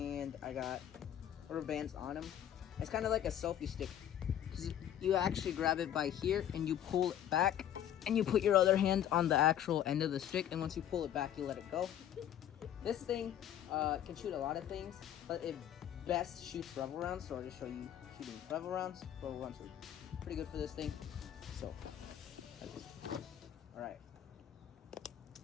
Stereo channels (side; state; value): right; quieter; 10.6 dB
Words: I got rubber bands on them. It's kind of like a selfie stick. You actually grab it by here, and you pull it back, and you put your other hand on the actual end of the stick, and once you pull it back, you let it go. This thing can shoot a lot of things, but it best shoots rubber rounds, so I'll just show you shooting rubber rounds. Rubber rounds are pretty good for this thing. So, alright.